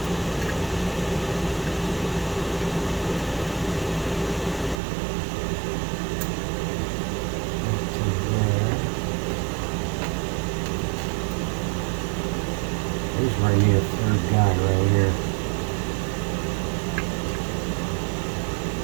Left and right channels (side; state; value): left; drops out; at 4.8 s